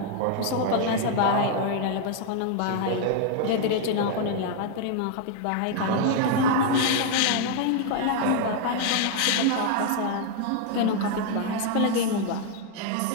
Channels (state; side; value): different; both; correlation 0.00